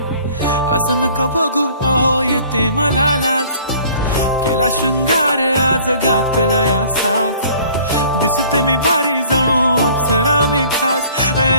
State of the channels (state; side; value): inverted; both; correlation -0.52